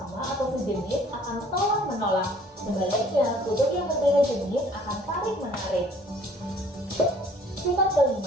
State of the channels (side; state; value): both; normal; correlation 0.56